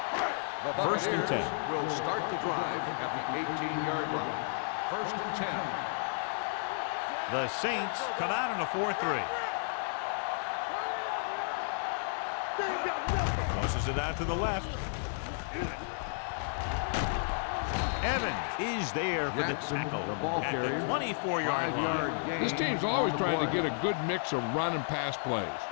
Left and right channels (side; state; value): right; silent; digital silence